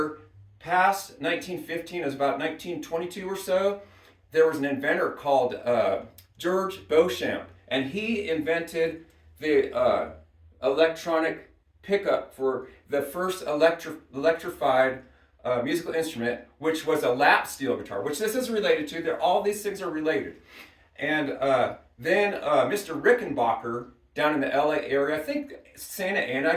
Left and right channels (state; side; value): identical; both; correlation 1.00